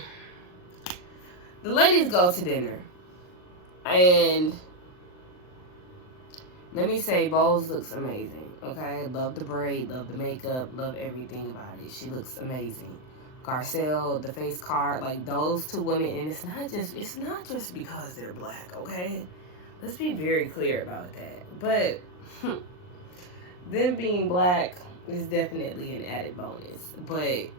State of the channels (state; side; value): late; right; 39 ms